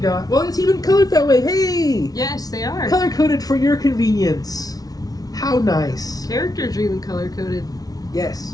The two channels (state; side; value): late; right; 0.18 ms